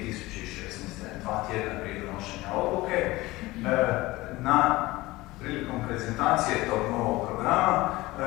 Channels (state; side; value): quieter; right; 19.7 dB